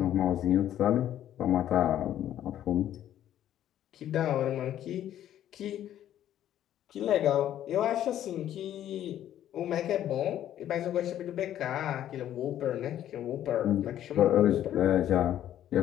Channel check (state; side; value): quieter; right; 11.6 dB